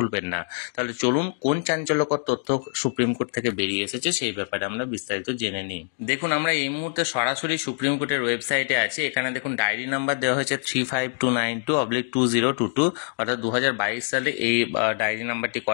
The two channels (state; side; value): silent; right; digital silence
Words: না। তাহলে চলুন কোন চাঞ্চল্যকর তথ্য সুপ্রিম কোর্ট থেকে বেরিয়ে এসেছে সেই ব্যাপারে আমরা বিস্তারিত জেনে নিই। দেখুন, আমরা এই মুহূর্তে সরাসরি সুপ্রিম কোর্টের ওয়েবসাইটে আছি। এখানে দেখুন ডায়েরি নাম্বার দেওয়া হয়েছে 35292/2022, অর্থাৎ 2022 সালে এই ডায়েরি নাম্বারটি